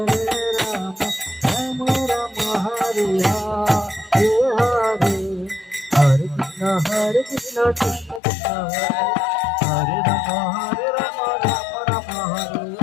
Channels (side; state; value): right; drops out; at 8.2 s